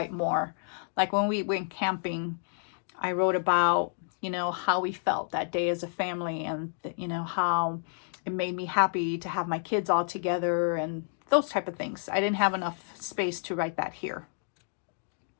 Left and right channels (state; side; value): silent; right; digital silence